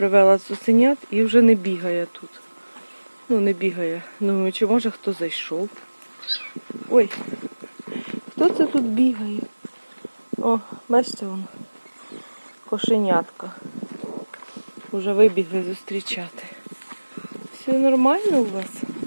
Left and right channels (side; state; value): both; inverted; correlation -1.00